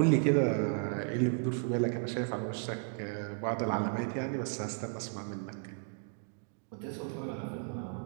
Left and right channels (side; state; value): left; silent; 55 dB below the other